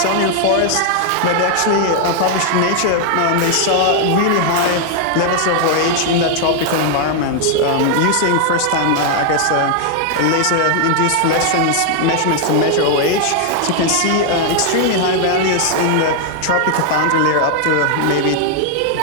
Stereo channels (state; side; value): different; both; correlation 0.00